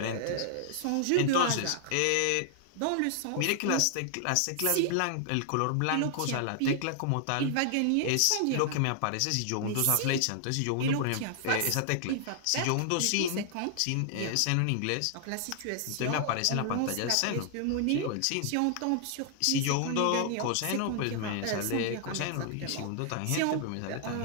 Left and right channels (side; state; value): both; different; correlation 0.00